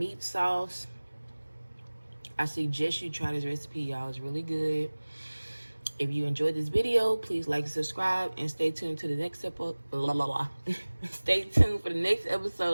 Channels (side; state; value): both; inverted; correlation -1.00